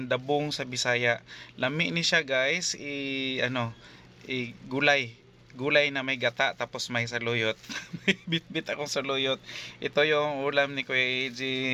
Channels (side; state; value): both; identical; correlation 1.00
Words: dabong sa Bisaya. Lami ni siya guys, gulay na may gata tapos may saluyot. May bit-bit akong saluyot. Ito yung ulam ni Kuya AJ